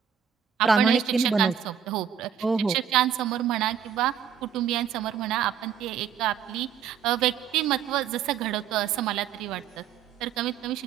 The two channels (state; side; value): quieter; left; 8.2 dB